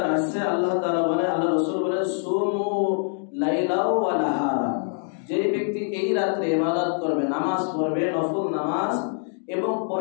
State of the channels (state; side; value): silent; right; 62 dB below the other